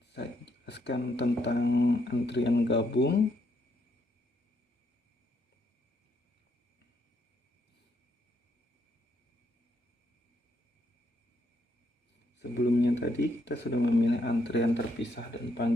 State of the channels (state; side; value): normal; both; correlation 0.75